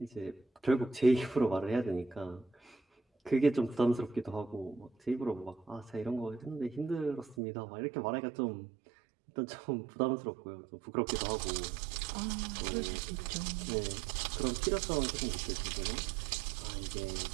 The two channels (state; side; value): drops out; left; at 7.4 s